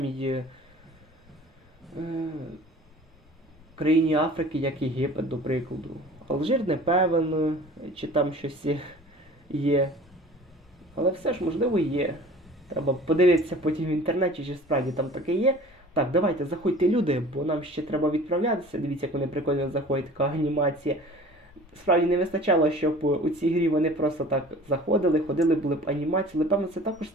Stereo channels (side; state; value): both; normal; correlation 0.44